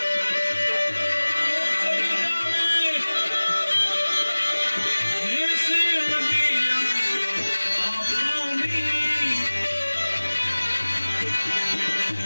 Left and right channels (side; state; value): both; inverted; correlation -1.00